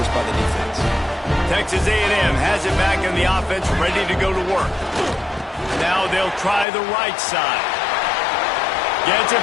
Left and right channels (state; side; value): drops out; right; at 6.7 s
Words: by the defense. Texas A&M has it back in the offense, ready to go to work. Now they'll try the right side. Gets it